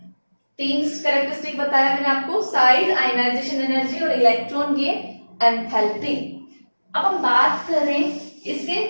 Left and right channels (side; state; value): both; inverted; correlation -1.00